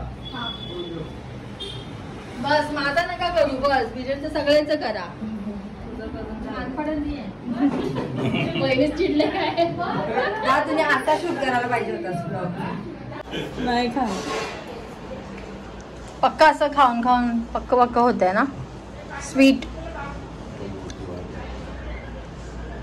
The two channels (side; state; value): both; identical; correlation 1.00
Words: बस माझा नका करू. बस बिजनचं सगळ्यांचं करा. पहिलेच चिडले काय तुम्ही आता शूट करायला पाहिजे होता. नाही खा पक्का असं खाऊन खाऊन पक्क होत आहे ना स्वीट.